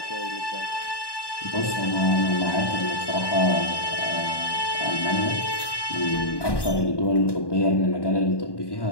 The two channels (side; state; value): right; late; 1.1 ms